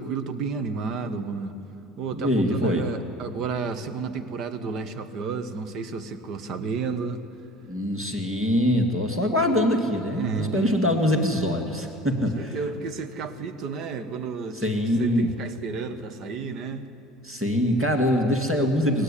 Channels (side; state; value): both; normal; correlation 0.45